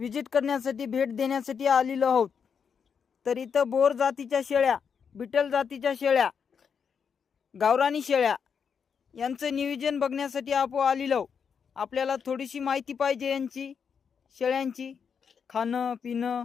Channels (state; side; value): quieter; right; 6.7 dB